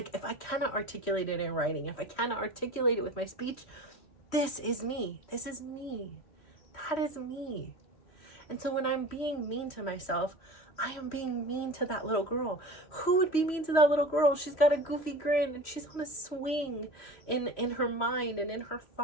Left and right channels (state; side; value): late; right; 3.1 ms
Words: if I cannot articulate it in writing, if I cannot articulate it with my speech, this is me. This is me. That is me. And so when I'm being mean to myself, I am being mean to that little girl. Who would be mean to that little girl? She's got a goofy grin and she's on a swing in her mind and in her